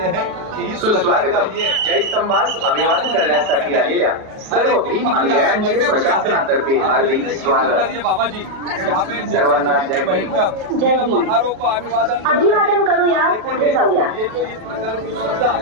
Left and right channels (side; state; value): left; late; 38 ms